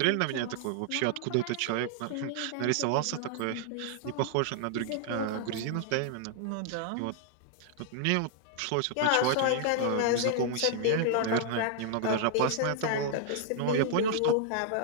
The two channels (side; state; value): both; different; correlation -0.01